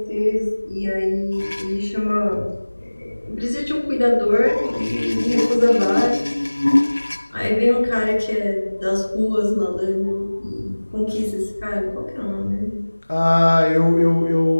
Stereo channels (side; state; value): both; inverted; correlation -1.00